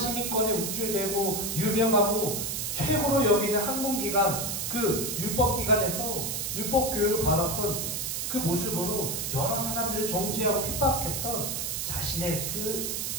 우쭐대고 유명하고 최고로 여기는 학문기관, 그 율법기관에서 율법교육을 받았던 그 모습으로 여러 사람들을 정죄하고 핍박했던 자신의 그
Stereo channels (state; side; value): noise; right; hiss, 2 dB below the sound